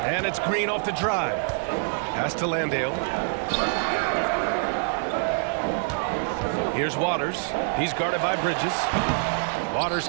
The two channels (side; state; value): left; silent; 61 dB below the other